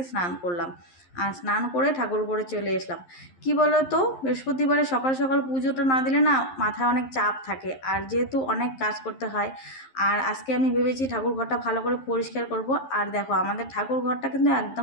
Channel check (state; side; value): late; right; 11 ms